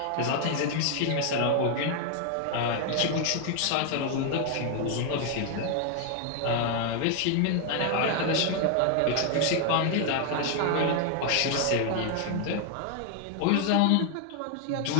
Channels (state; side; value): different; both; correlation 0.00